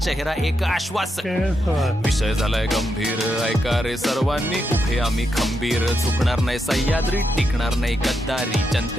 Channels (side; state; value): both; normal; correlation 0.83